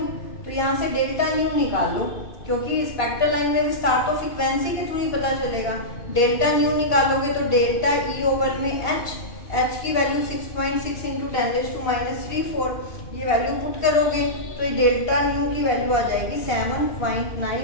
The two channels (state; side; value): late; right; 2.5 ms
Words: तो यहाँ से डेल्टा न्यू निकाल लो क्योंकि स्पेक्ट्रल लाइन में विस्तार तो फ्रीक्वेंसी के थ्रू ही पता चलेगा। डेल्टा न्यू निकालोगे तो डेल्टा ई ओवर में h की वैल्यू 6.6 इंटू 10⁻⁴ ये वैल्यू पुट करोगे तो ये डेल्टा न्यू की वैल्यू आ जाएगी